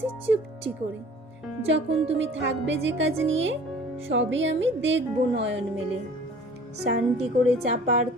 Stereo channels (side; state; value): both; normal; correlation 0.48